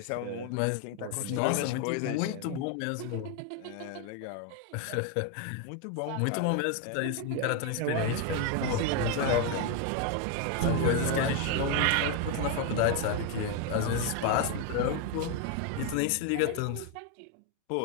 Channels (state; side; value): different; both; correlation 0.01